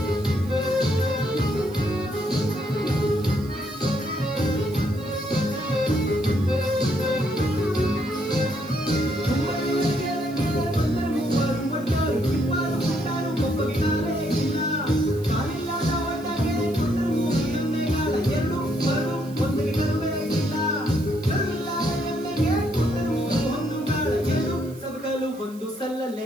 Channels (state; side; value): noise; right; hiss, 23 dB below the sound